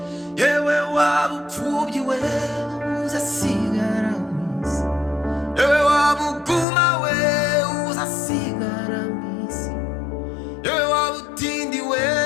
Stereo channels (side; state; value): right; drops out; at 6.7 s